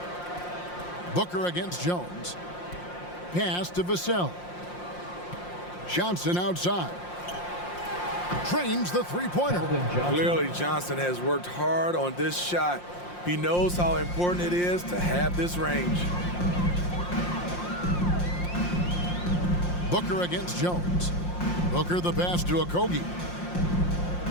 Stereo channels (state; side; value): late; right; 5.7 ms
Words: Booker against Jones. Pass to Vassell. Johnson outside. Trains the three-pointer. Clearly, Johnson has worked hard on this shot. He knows how important it is to have this range. Booker against Jones. Booker the pass to Okogie.